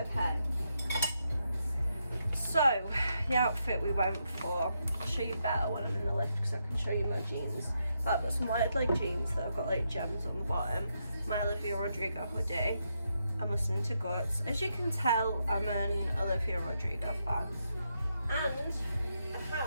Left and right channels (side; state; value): both; inverted; correlation -0.81